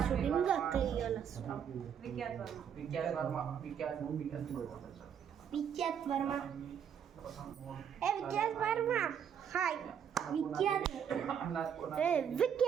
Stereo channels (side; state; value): left; quieter; 8.2 dB